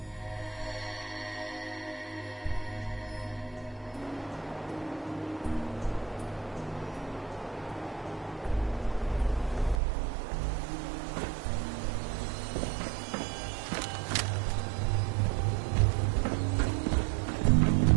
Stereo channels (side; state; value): left; drops out; at 9.8 s